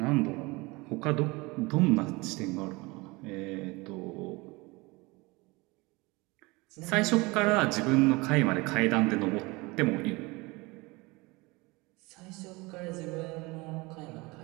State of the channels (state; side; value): quieter; left; 24.3 dB